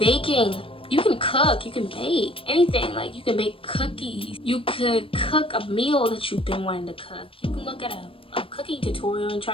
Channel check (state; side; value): late; right; 0.26 ms